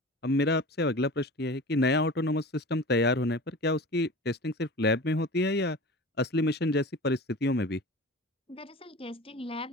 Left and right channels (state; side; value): normal; both; correlation 0.36